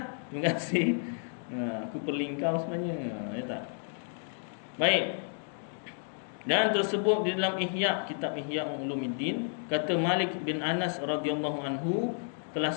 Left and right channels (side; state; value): right; silent; 57 dB below the other